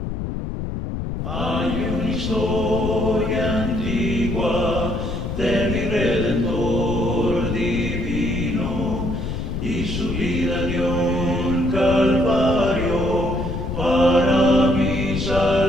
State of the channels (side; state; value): left; noise; rumble, 4 dB below the sound